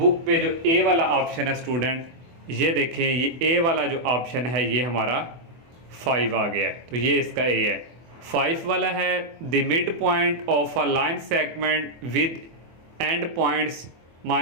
पे जो ए वाला ऑप्शन है स्टूडेंट, ये देखें ये ए वाला जो ऑप्शन है ये हमारा 5 आ गया है, तो ये इसका ए है। 5 वाला है the mid point of a line segment with and points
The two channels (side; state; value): left; late; 24 ms